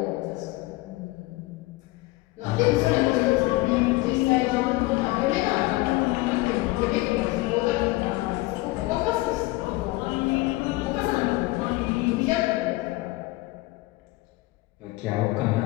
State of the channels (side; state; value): right; quieter; 20.4 dB